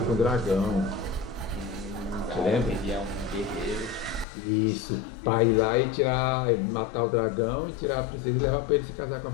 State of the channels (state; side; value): drops out; right; at 4.2 s